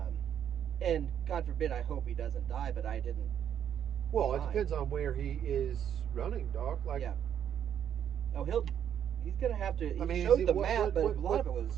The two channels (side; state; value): left; quieter; 9.3 dB